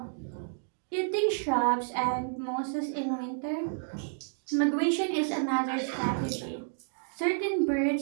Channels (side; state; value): left; silent; digital silence